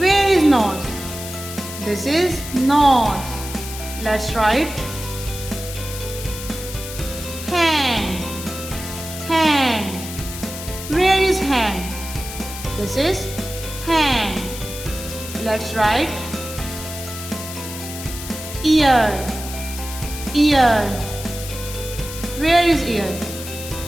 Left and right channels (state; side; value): noise; left; hiss, 10 dB below the sound